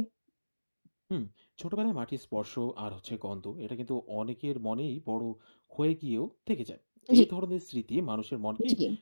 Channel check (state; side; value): inverted; both; correlation -1.00